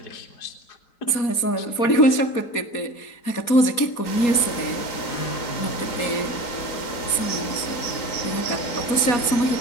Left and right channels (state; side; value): late; right; 4.2 ms